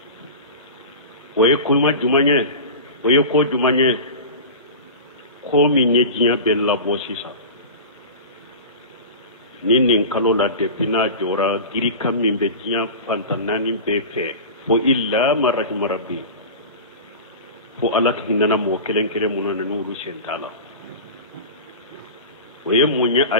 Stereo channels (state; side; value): inverted; both; correlation -0.31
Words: oye kuma jumanye oye ko jumanye ko minye jinya bella bosisa nin kalo la depina jora giri kam min be jinya fantanani be fe fo illa marahim rabbi fo alak hinana mo kelen kelen munana nuru sentala oye munya